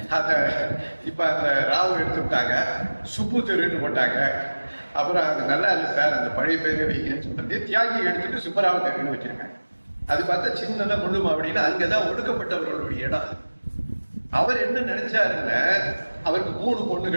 இப்ப அந்த ராவ் எடுத்துட்டாங்க, சுப்பு தெருன்னு போட்டாங்க. அப்புறம் அது நல்லா இல்லை சார், அந்த பழைய பேரை வைங்கன்னு சொல்றது தியாகி எடுத்துட்டு சுப்பராவ தேவின்னு வச்சிருக்காங்க. அது பார்த்தா சின்னதா முள்ளுமா அப்படின்னா அங்கதான் ஒடுக்கப்பட்டவர்களுடைய இடம். அவர் என்ன நினைச்சாருன்னா, அவருக்கு 3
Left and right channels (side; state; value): both; inverted; correlation -1.00